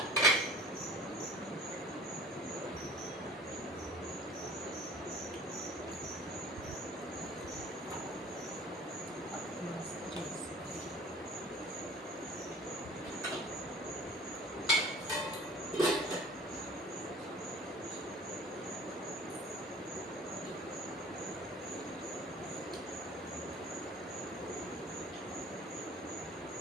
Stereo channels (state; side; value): normal; both; correlation 0.46